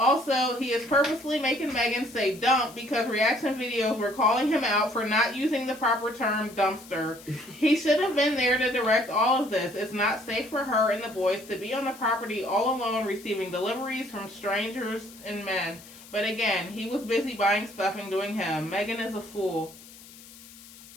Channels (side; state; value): left; noise; hiss, 20 dB below the sound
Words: he is purposely making Megan say dump because reaction videos were calling him out for not using the proper term dumpster. He should have been there to direct all of this. It's not safe for her and the boys to be on the property all alone receiving deliveries from strangers and men. But again, he was busy buying stuff and doing him. Megan is a fool.